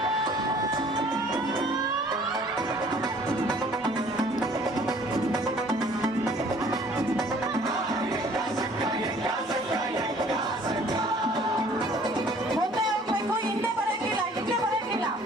ಮುಂದೆ ಹೋಗ್ಬೇಕು, ಹಿಂದೆ ಬರಂಗಿಲ್ಲ.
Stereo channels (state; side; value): normal; both; correlation 0.55